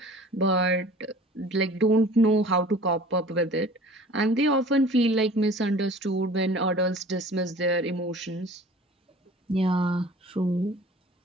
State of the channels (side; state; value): both; normal; correlation 0.45